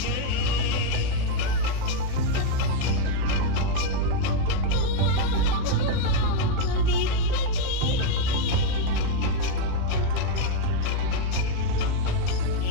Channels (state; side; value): different; both; correlation 0.00